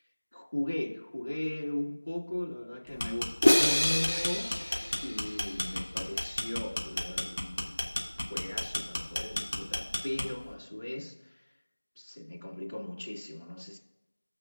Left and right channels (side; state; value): both; inverted; correlation -1.00